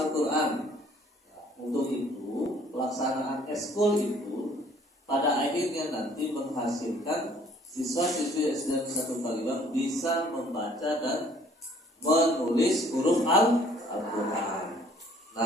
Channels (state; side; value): normal; both; correlation 0.57